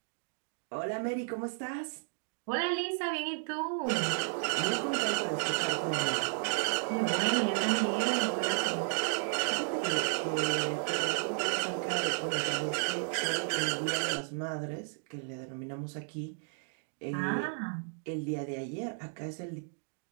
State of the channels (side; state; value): left; silent; 56 dB below the other